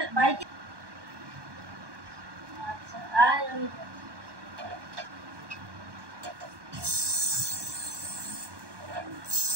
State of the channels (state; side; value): late; left; 1.2 ms